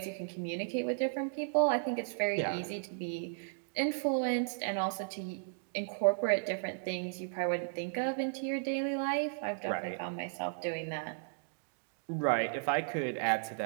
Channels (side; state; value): left; silent; digital silence